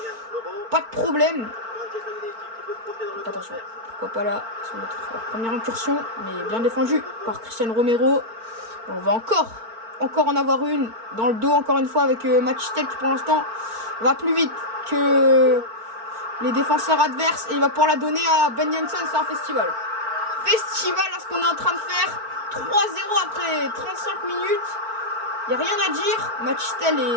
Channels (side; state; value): left; late; 4.4 ms